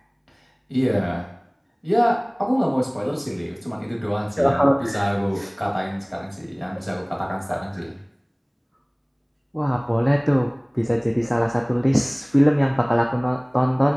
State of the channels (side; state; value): both; identical; correlation 1.00